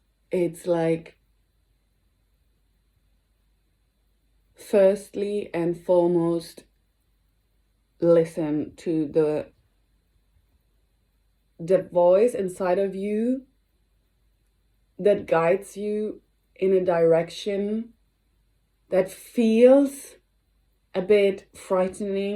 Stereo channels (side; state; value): both; identical; correlation 1.00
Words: It's like, firstly and foremost, listen to the voice inside of you that guides you in a direction that feels a bit